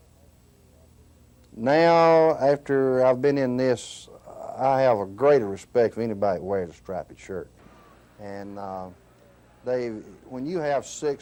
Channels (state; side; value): identical; both; correlation 1.00